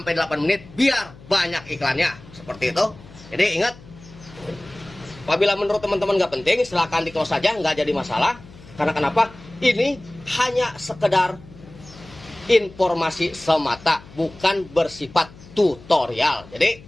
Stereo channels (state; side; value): noise; left; hum, 21 dB below the sound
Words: 8 menit biar banyak iklannya. Seperti itu. Jadi ingat, apabila menurut teman-teman nggak penting, silahkan di close saja, nggak jadi masalah. Karena kenapa? Ini hanya sekedar informasi semata, bukan bersifat tutorial. Jadi